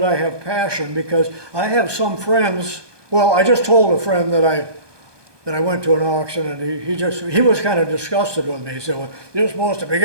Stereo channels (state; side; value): late; left; 1.2 ms